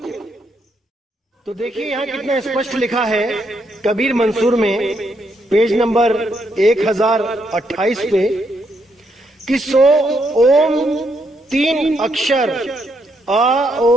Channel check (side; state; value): both; normal; correlation 0.77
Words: तो देखिए यहाँ कितना स्पष्ट लिखा है कबीर मंसूर में, पेज नंबर 1028 पे, कि सो ओम 3 अक्षर आ